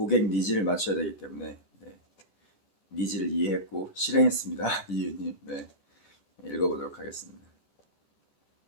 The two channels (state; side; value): late; right; 14 ms